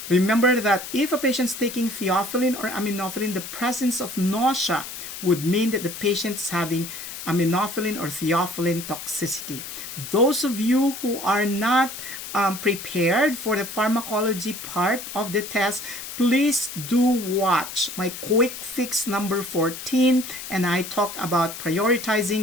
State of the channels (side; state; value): left; noise; hiss, 9 dB below the sound